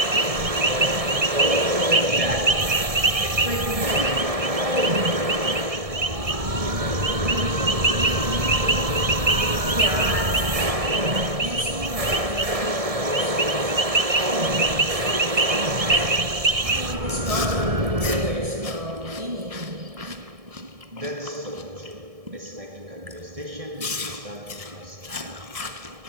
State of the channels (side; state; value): left; late; 1.7 ms